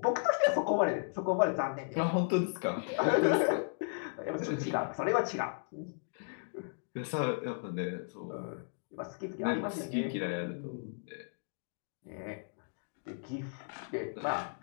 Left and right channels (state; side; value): silent; right; digital silence